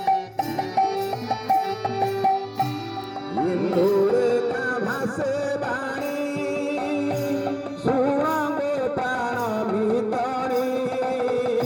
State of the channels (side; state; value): both; identical; correlation 1.00